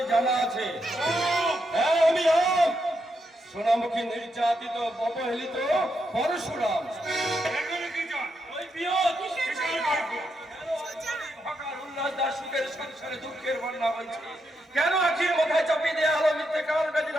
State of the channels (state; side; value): normal; both; correlation 0.82